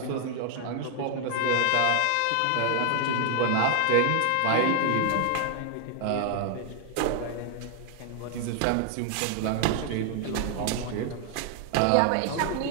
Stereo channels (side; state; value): both; different; correlation 0.00